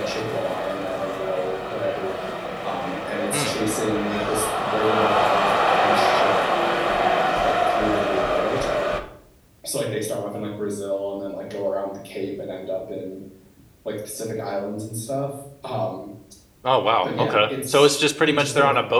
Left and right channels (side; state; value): both; identical; correlation 1.00